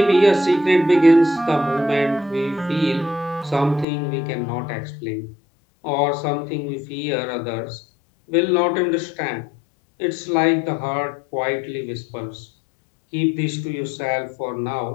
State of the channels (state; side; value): drops out; right; at 3.9 s